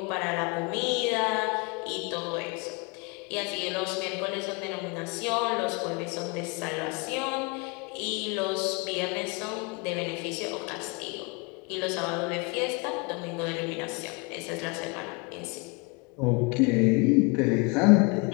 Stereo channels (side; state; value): right; quieter; 29.9 dB